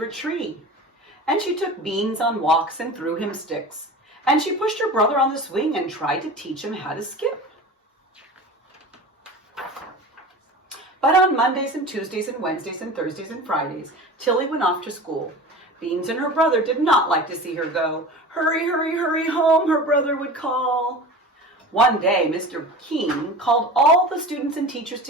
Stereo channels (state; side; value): normal; both; correlation 0.34